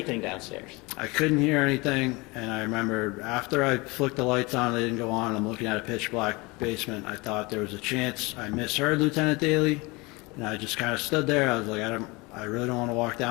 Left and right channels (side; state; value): right; quieter; 25.1 dB